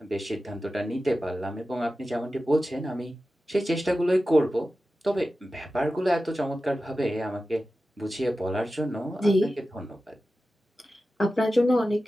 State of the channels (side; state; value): both; normal; correlation 0.94